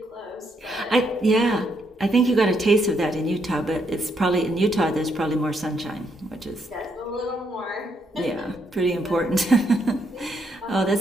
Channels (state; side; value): normal; both; correlation 0.76